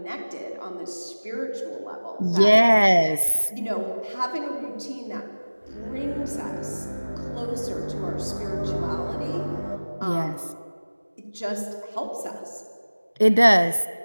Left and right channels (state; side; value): inverted; both; correlation -1.00